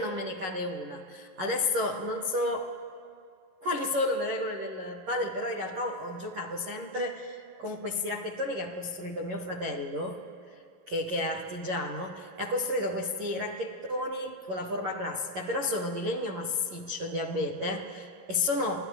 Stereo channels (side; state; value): left; late; 11 ms